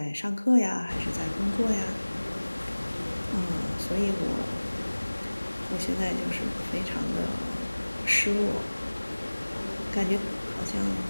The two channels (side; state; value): both; inverted; correlation -1.00